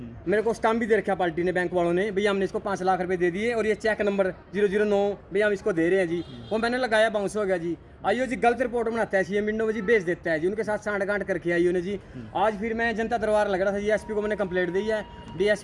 मेरे को स्टाम्प भी दे रखा पार्टी ने, बैंक वालों ने, भैया हमने इसको 5 लाख रुपए दे दिए और ये चेक नंबर 009 भैया हम इसको दे रहे हैं जी। वो मैंने लगाया, बाउंस हो गया जी। IO जी गलत रिपोर्ट बनाता है, CM विंडो में जी भेज देता है जी। उनके साथ सांठ-गांठ करके IO ने जी। आज फिर मैं जनता दरबार लग रहा था जी, SP को मैंने कंप्लेंट दी है।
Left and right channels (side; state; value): both; identical; correlation 1.00